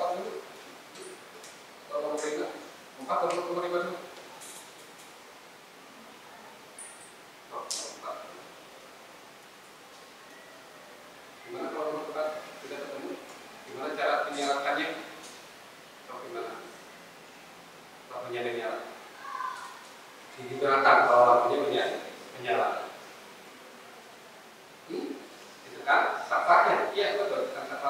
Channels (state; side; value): identical; both; correlation 1.00